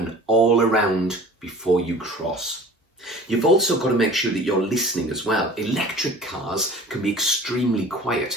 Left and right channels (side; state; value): both; normal; correlation 0.43